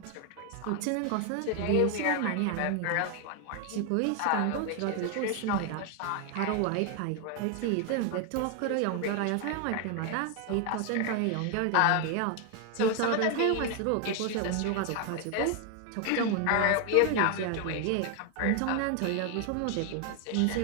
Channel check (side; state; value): both; different; correlation 0.01